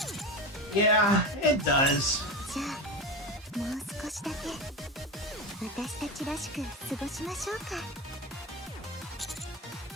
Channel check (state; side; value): normal; both; correlation 0.22